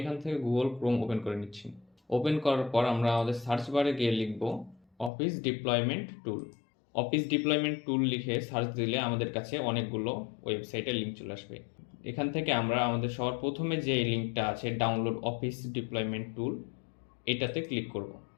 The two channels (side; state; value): right; drops out; at 5.1 s